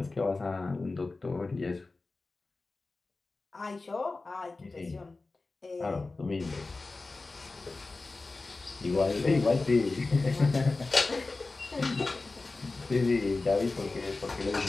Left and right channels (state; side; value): quieter; right; 3.5 dB